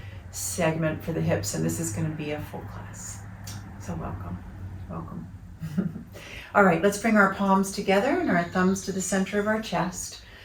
segment for the hips, and this is going to be a full class. So welcome. All right, let's bring our palms together and our thumbs to the center of our chest,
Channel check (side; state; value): both; identical; correlation 1.00